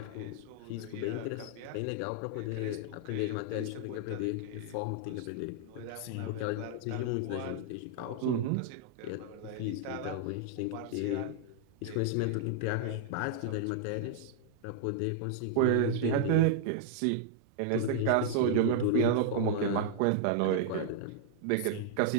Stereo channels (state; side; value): different; both; correlation -0.01